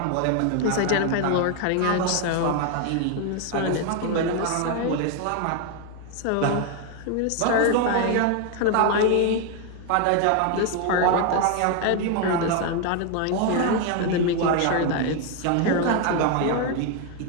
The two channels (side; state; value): both; different; correlation 0.01